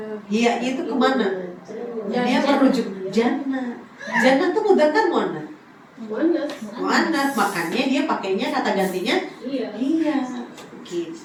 Iyanya itu kemana? Dia merujuk jannah. Jannah tuh mudzakkar muannas. Muannas. Muannas, makanya dia pakainya kata gantinya Iya. iya.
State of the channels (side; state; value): both; identical; correlation 1.00